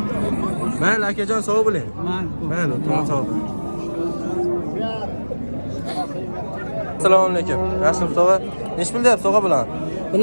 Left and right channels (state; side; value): inverted; both; correlation -1.00